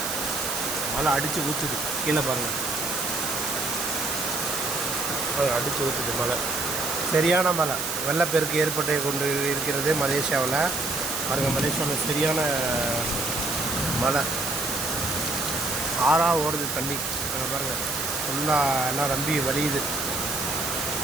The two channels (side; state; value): right; noise; hiss, 3 dB below the sound